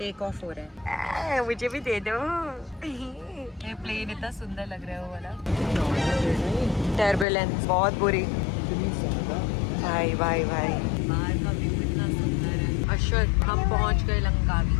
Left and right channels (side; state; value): right; drops out; at 7.2 s